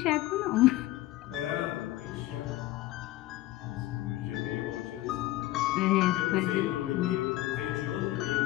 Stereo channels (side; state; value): right; quieter; 16.6 dB